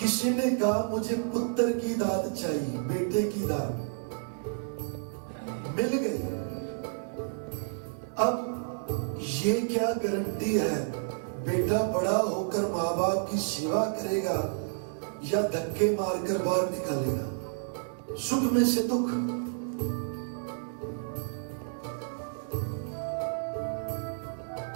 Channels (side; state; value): left; silent; digital silence